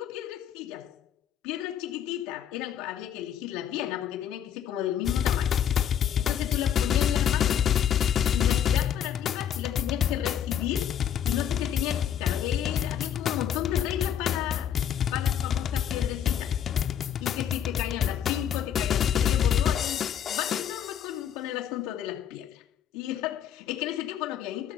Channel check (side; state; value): right; quieter; 9.3 dB